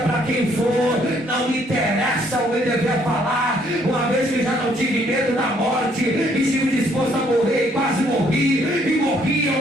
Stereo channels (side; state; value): both; normal; correlation 0.66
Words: quem for, não me interessa o que ele devia falar. Uma vez que já não tive medo da morte, e estive disposto a morrer, e quase morri, e morri